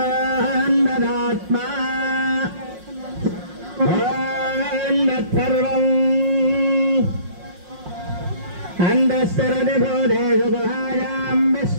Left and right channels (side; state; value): left; late; 5.6 ms